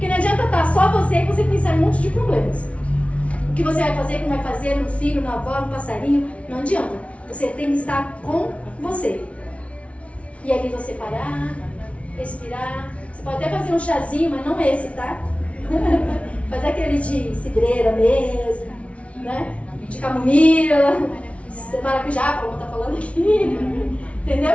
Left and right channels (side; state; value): right; late; 0.063 ms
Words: não adianta estar só você e você pensar em um monte de problemas. O que você vai fazer, o que não vai fazer, no filho, na avó, no passarinho, não adianta. Você tem que estar com você. E ali você parar, respirar. Você pode até fazer um chazinho, mas não esse, tá? Fazer aquele de cidreira mesmo, né? De camomila, de maracujá, como tá falando aqui.